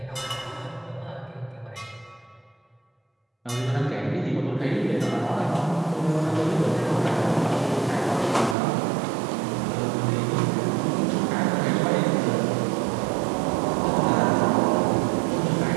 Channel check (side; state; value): left; drops out; at 8.6 s